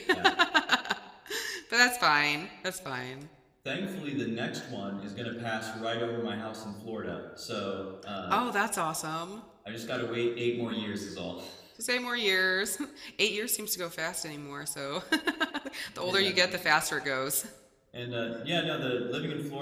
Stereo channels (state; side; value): identical; both; correlation 1.00